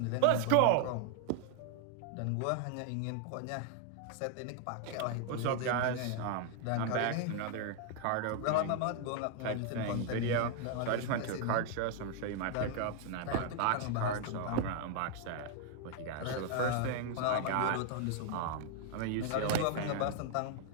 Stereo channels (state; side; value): different; both; correlation 0.00